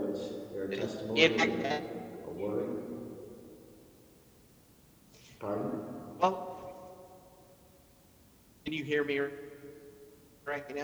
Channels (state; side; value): identical; both; correlation 1.00